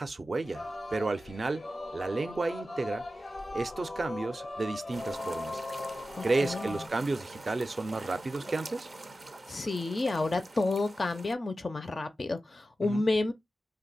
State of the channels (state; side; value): normal; both; correlation 0.93